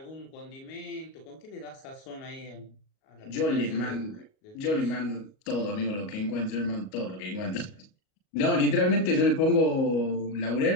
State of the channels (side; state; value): right; late; 38 ms